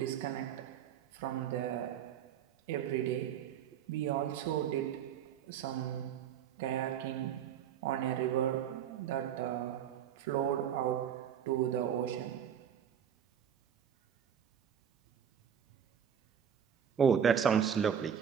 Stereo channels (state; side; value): quieter; left; 8.8 dB